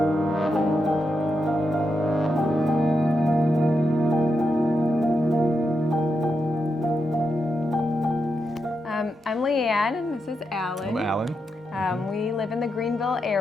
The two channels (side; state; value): both; normal; correlation 0.85